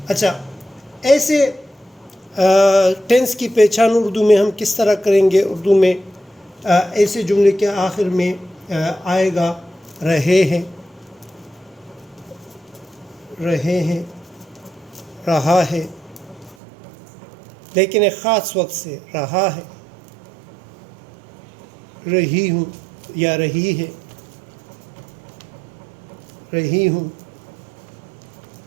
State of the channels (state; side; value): drops out; left; at 16.6 s